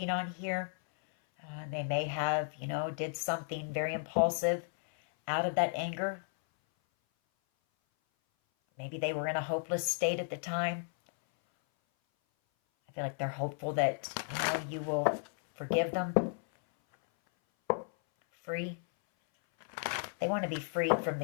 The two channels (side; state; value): right; silent; 55 dB below the other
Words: on here. They may have, did something very impulsive out of that anger. Maybe they were in a hopeless state at the time. I feel like they're hopeful that, you will forgive them. Free. They want to be freed from the